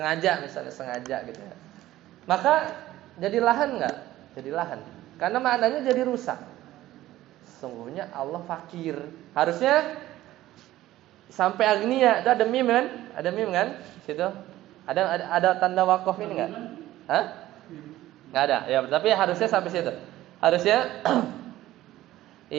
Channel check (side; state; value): left; quieter; 15.1 dB